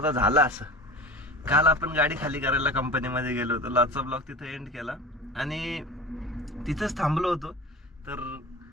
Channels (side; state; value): both; normal; correlation 0.34